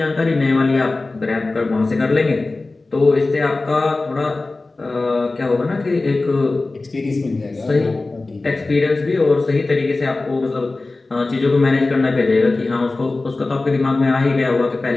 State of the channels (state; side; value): quieter; right; 3.3 dB